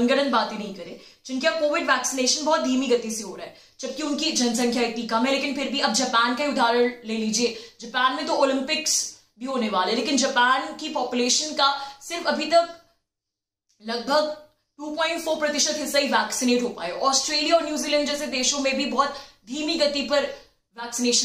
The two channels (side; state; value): both; identical; correlation 1.00